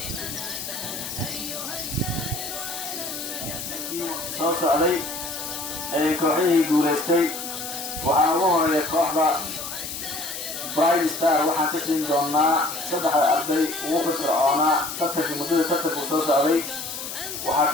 أتانا أيها السائر أهلا لك في soo socday ee kooxihii guulaystay waxaa ugu horeeya kooxda Bright Star waxaan ka siin doonaa 3 arday ugu firfircoonaa tartanka muddada tartanku soo socday waxaa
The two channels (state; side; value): noise; left; hiss, 7 dB below the sound